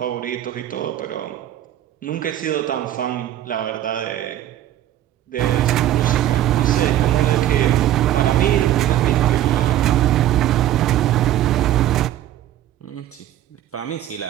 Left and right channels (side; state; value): left; quieter; 12.6 dB